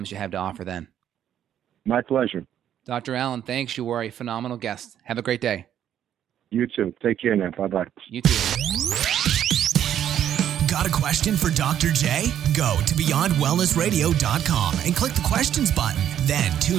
you have to offer then. My pleasure. Dr. Allan, thanks. You were a phenomenal guest. Have a great day. You too. Take care now. Bye-bye. You too. Got a question for Dr. J? Go to BeyondWellnessRadio.com and click the questions button. Then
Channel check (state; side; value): quieter; left; 10.3 dB